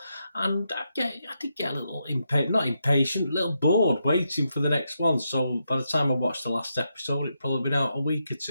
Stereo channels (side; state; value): both; inverted; correlation -0.83